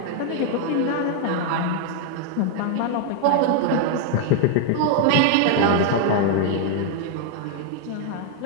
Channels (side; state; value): both; different; correlation 0.00